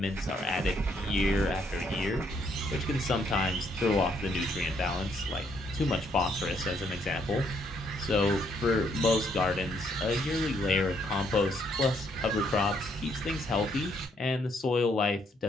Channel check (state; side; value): normal; both; correlation 0.71